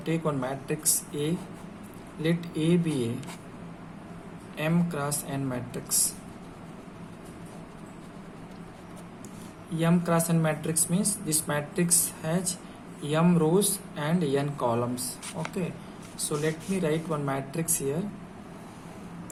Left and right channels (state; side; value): identical; both; correlation 1.00